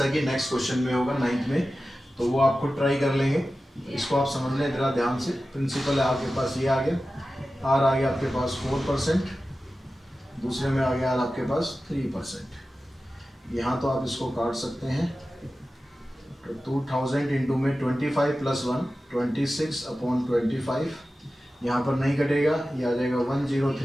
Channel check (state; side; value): normal; both; correlation 0.94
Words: कि नेक्स्ट क्वेश्चन में होगा 9th में, तो वो आप खुद ट्राई कर लेंगे। इसको आप समझ लें जरा ध्यान से। प्रिंसिपल है आपके पास ये आ गया, R आ गया आपके पास 4%, दूसरे में आ गया आपके पास 3%। यहाँ तो आप इसको काट सकते हैं तो 2000 इंटू में 25 + 1 26/25, यहाँ पर नहीं कटेगा, ये आ जाएगा